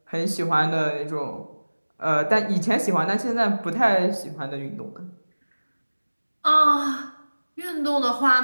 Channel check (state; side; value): inverted; both; correlation -1.00